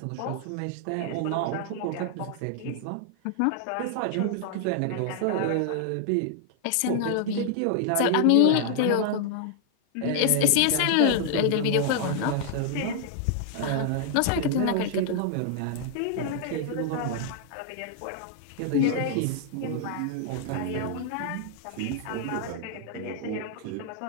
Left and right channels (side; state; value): both; different; correlation 0.00